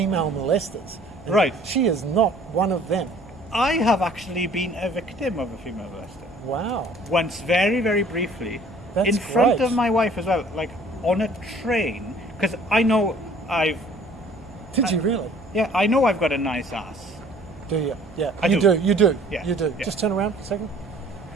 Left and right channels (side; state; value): both; normal; correlation 0.53